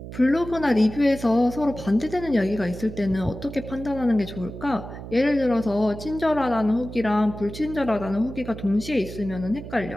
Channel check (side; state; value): right; noise; hum, 11 dB below the sound